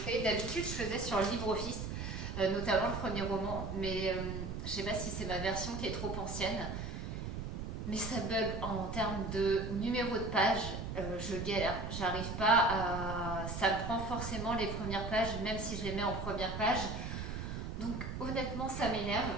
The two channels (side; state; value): right; noise; rumble, 5 dB below the sound